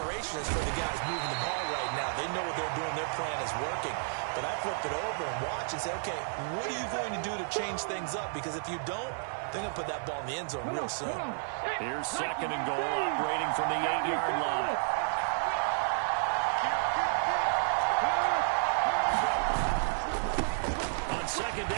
is for the guys moving the ball right now. They know what they're doing. Their plan is working. But I flip it over and watch and say, okay, what are you going to do to change things up? Because if you don't, they're going to put that ball in the end zone real soon. Here's second and goal, operating from the 8-yard line. On second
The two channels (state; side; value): silent; left; 57 dB below the other